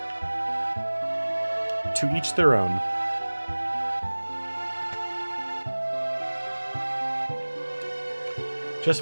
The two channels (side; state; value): both; inverted; correlation -1.00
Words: to each their own. Just